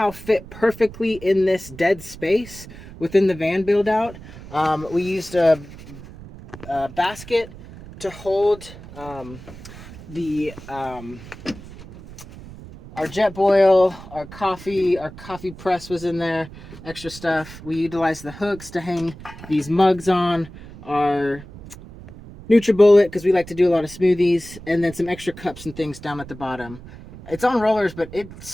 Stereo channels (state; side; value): noise; right; rumble, 16 dB below the sound